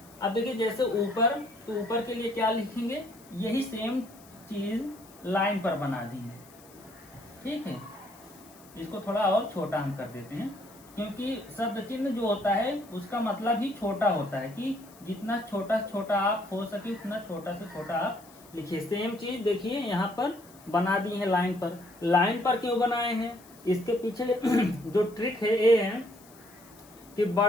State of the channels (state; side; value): noise; left; hiss, 24 dB below the sound